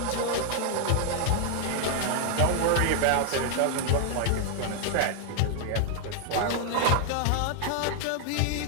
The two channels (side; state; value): both; different; correlation 0.00